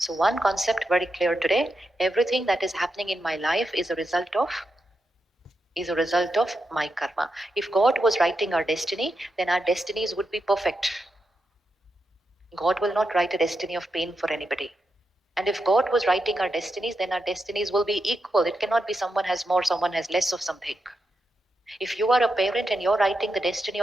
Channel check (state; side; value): normal; both; correlation 0.87